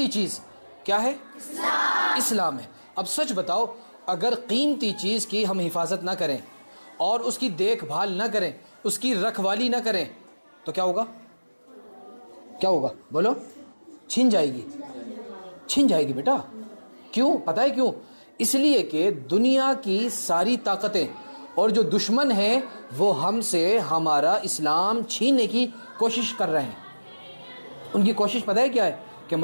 چیز کیا ہے؟ اسلام ہے. اب سچ بتاؤ، اگر قیمتی چیز کی ہم حفاظت نہ کریں اور اس کی دیکھ بھال نہ کریں، اس کی رکھوالی نہ کریں تو کیا ہوگا؟ کیا ہوگا بولو؟ چھن جائے گی. چھن جائے گی بیٹا. کیوں؟ پتہ ہے کیوں؟ اس لیے کہ دنیا کی ساری طاقتیں اور جو دشمن ہیں وہ ہم سے ہمارا اسلام چھیننے کی کوشش کر رہے ہیں. ان کی کوشش پتہ ہے کیا ہے؟ کہ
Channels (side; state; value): both; inverted; correlation -1.00